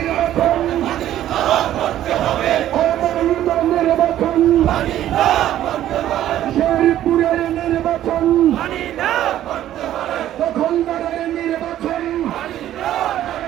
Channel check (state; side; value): quieter; left; 12.4 dB